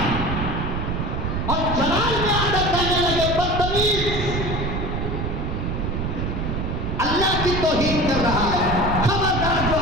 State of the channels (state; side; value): noise; right; rumble, 2 dB below the sound